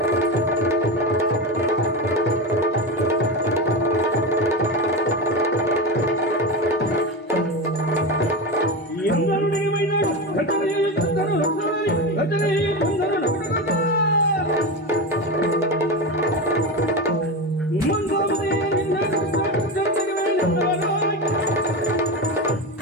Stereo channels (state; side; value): normal; both; correlation 0.19